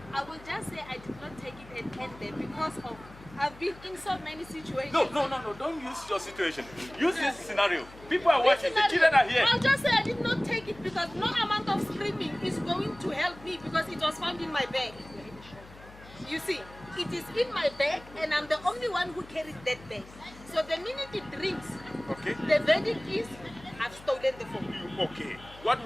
I will just say I did not take it and end there because of I've been in so many situations. No. Don't use your situation. Use this scenario. People are watching. The children are here. I'll just say I did not take it because no amount of screaming is going to help me because it was found in my bag. You see, it is in my bag and I'm the only one who carries that bag. So the minute it rings, Okay. the verdict is I've stolen the phone. Okay. What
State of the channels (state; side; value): noise; left; hum, 20 dB below the sound